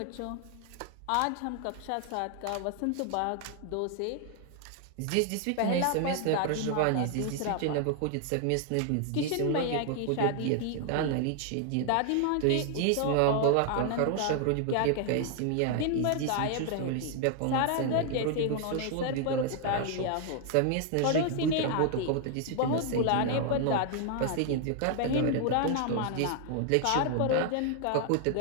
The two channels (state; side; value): different; both; correlation 0.00